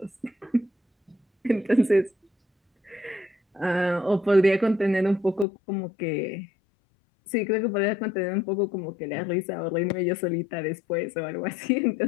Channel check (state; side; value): drops out; right; at 5.5 s